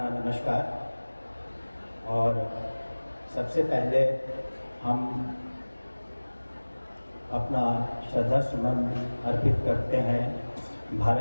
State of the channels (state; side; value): inverted; both; correlation -1.00